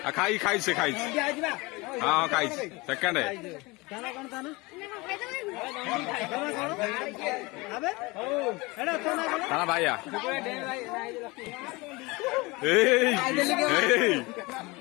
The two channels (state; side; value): quieter; right; 24.1 dB